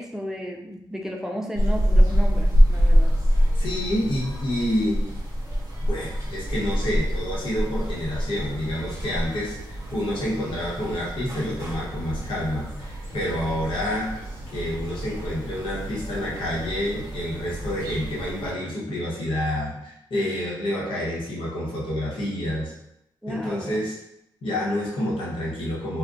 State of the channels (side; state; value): both; normal; correlation 0.87